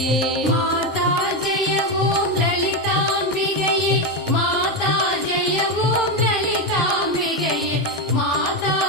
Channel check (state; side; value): normal; both; correlation 0.10